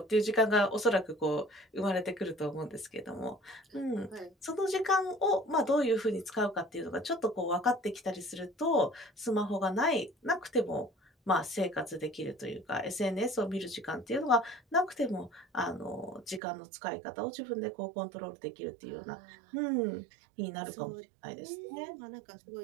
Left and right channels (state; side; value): drops out; left; at 16.4 s